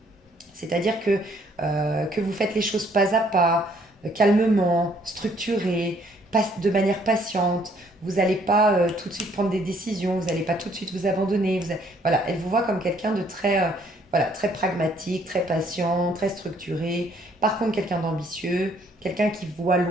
C'est-à-dire que vous faites les choses pas à pas, calmement, structuré, de manière patiente. Vous n'allez pas tout de suite prendre des décisions, vous n'allez pas tout de suite vous abandonner. Voilà, elle vous voit comme quelqu'un de très, voilà, très pragmatique, très patient, très structuré. Par contre, quelqu'un d'ambitieux, quelqu'un qui voit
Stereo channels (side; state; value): both; normal; correlation 0.64